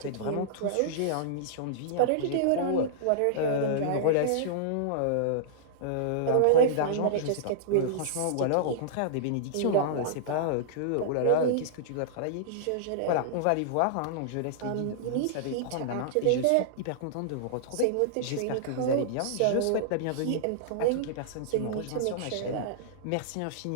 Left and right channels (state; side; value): different; both; correlation -0.02